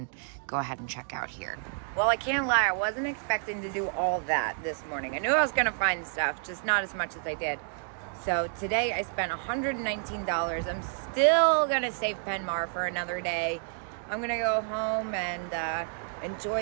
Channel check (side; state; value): left; silent; 58 dB below the other